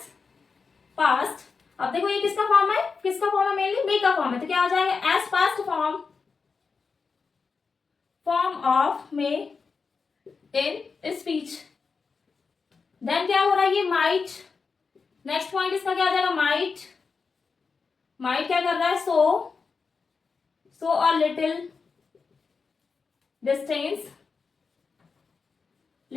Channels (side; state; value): right; quieter; 5.0 dB